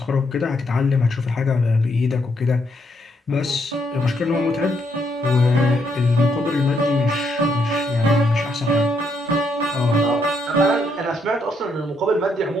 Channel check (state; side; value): normal; both; correlation 0.75